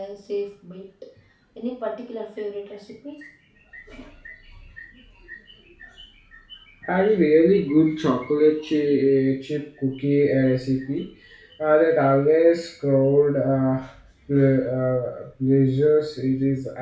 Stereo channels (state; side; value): identical; both; correlation 1.00